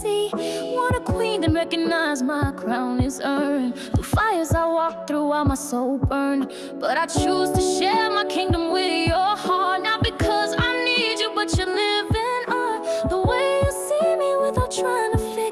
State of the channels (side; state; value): both; identical; correlation 1.00